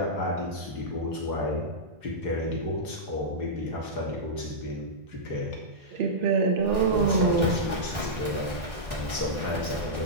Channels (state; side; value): late; left; 1.4 ms